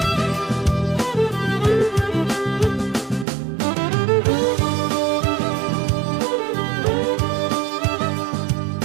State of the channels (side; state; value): left; drops out; at 3.2 s